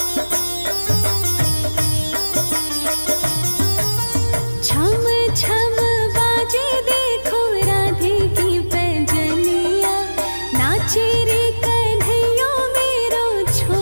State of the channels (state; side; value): inverted; both; correlation -1.00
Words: छम छम बाजे देखो राधे की पैजनिया। नाचे रे कन्हैया मेरो